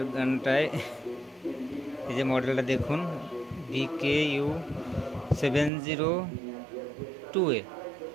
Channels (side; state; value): left; drops out; at 5.7 s